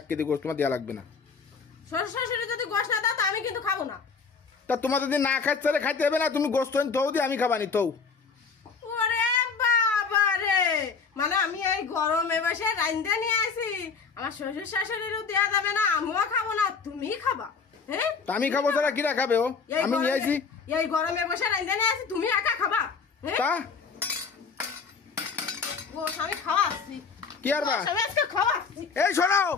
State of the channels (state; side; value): quieter; right; 5.3 dB